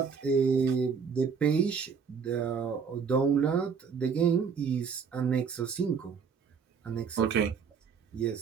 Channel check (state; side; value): quieter; left; 6.1 dB